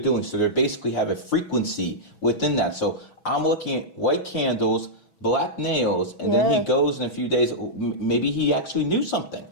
doing. So they basically have a frequency within that. So I'm looking at white candles, black nails, and then he goes in a few days. Maybe he actually knew something.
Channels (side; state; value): right; late; 6.1 ms